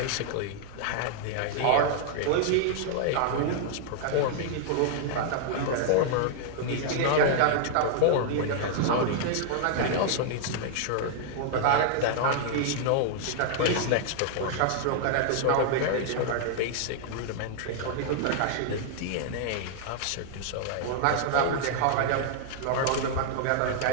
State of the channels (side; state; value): both; different; correlation -0.01